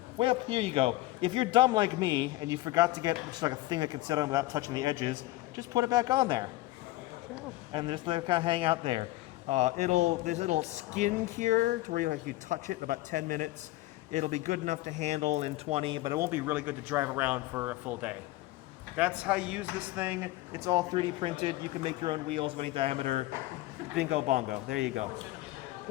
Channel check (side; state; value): right; quieter; 17.9 dB